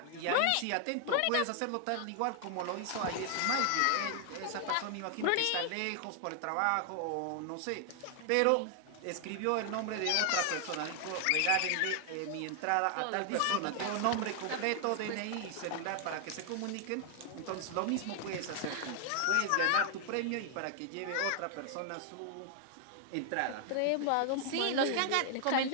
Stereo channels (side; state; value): both; different; correlation 0.00